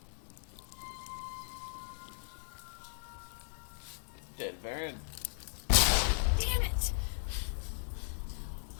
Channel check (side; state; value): right; silent; digital silence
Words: Dead Baron. Damn it!